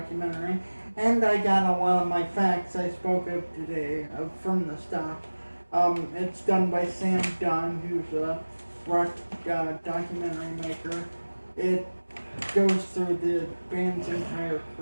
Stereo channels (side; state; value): both; inverted; correlation -1.00